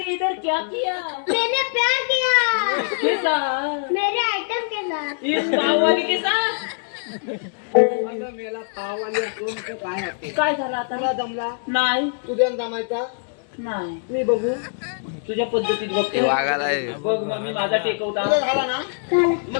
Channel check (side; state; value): right; silent; digital silence